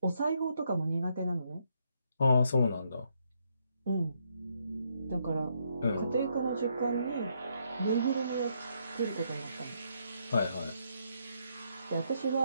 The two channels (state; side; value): inverted; both; correlation -0.75